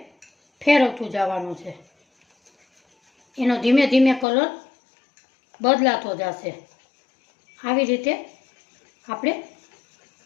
ફેરવતું જવાનું છે. એનો ધીમે ધીમે કલર બદલાતો જશે. આવી રીતે આપણે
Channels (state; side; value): drops out; right; at 4.2 s